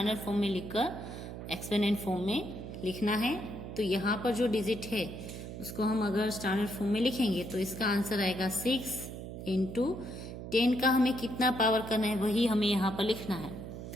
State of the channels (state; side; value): noise; right; hum, 9 dB below the sound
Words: फॉर्म में लिखकर एक्सपेंडेड फॉर्म में लिखना है। तो यहाँ पर जो डिजिट है उसको हम अगर स्टैंडर्ड फॉर्म में लिखेंगे तो इसका आंसर आएगा 6 इंटू 10 का हमें कितना पावर करना है वही हमें यहाँ पर लिखना है।